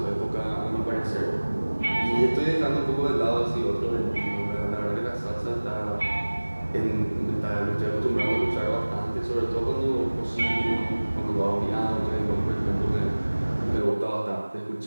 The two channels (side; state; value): both; inverted; correlation -1.00